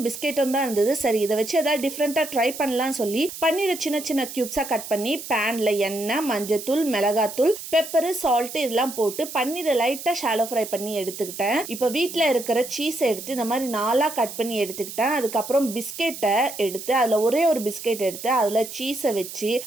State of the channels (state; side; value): noise; right; hiss, 11 dB below the sound